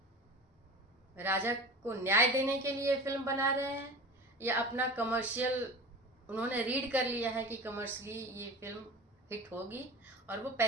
राजा को न्याय देने के लिए फिल्म बना रहे हैं, या अपना कमर्शियल उन्होंने रीड कर लिया है कि कमर्शियली ये फिल्म हिट होगी और वो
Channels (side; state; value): both; normal; correlation 0.35